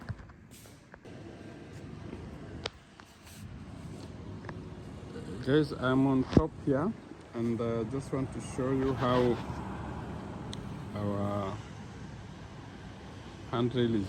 Guys, I'm on top here, and just want to show you how our handrail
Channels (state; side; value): identical; both; correlation 1.00